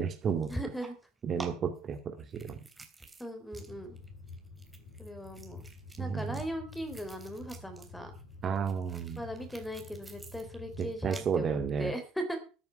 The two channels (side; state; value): left; quieter; 4.1 dB